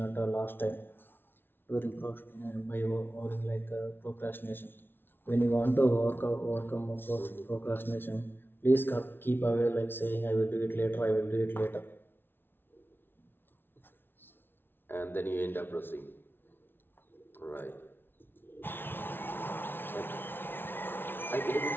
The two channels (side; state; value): right; late; 0.10 ms